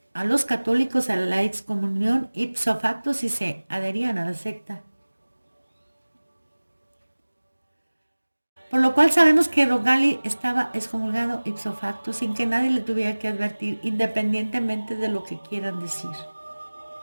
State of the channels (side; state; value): both; inverted; correlation -1.00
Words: a los católicos a la excomunión ipso facto si se adherían a la secta. Por lo cual sabemos que Roncalli estaba excomulgado ipso facto sin que nadie le tuviera que advertir, independientemente de lo que quieran decir.